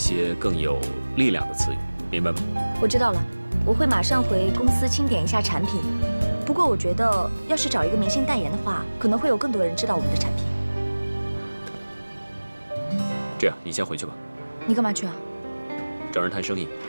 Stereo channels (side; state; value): both; inverted; correlation -1.00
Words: 更有力量的词语，明白吗？我知道了，我会马上回公司清点一下产品。不过我觉得，要是找一个明星代言的话，可能会有更多人知道我们的产品。这样，你先回去吧。你干嘛去啊？找人谈生意。